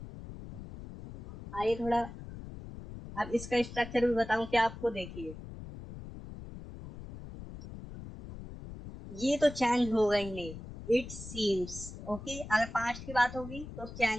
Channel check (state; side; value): noise; left; rumble, 12 dB below the sound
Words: आइए थोड़ा अब इसका स्ट्रक्चर भी बताऊं क्या आपको। देखिए ये तो चेंज होगा ही नहीं। इट सीम्स, ओके, अगर पास्ट की बात होगी तो